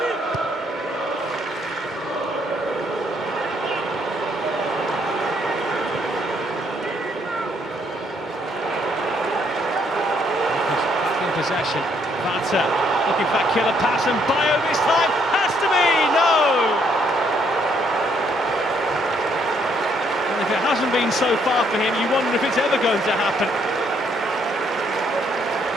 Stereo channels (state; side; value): normal; both; correlation 0.70